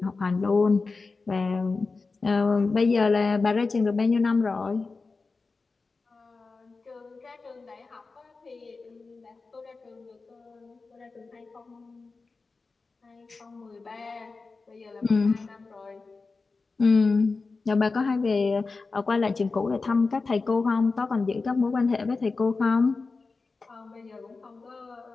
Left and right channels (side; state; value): right; quieter; 4.1 dB